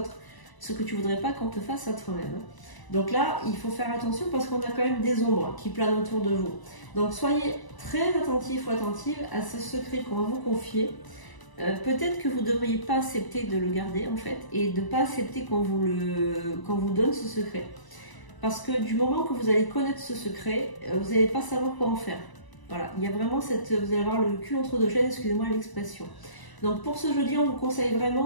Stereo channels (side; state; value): right; late; 1.0 ms